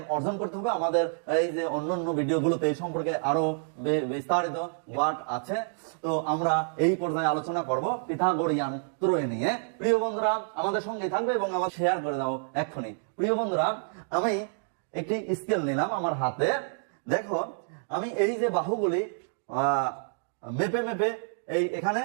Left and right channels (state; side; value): silent; left; digital silence